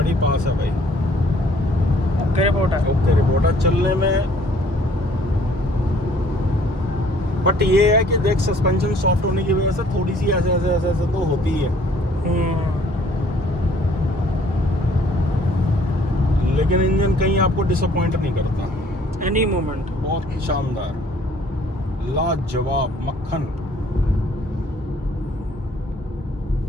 पास है भाई। ओके रिपोर्ट है। ओके रिपोर्ट है चलने में। बट ये है कि देख, सस्पेंशन सॉफ्ट होने की वजह से थोड़ी सी ऐसे ऐसे ऐसे ऐसे तो होती है, लेकिन इंजन कहीं आपको डिसअपॉइंट नहीं करता। एनी मोमेंट बहुत शानदार। लाजवाब मक्खन।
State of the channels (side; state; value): both; normal; correlation 0.59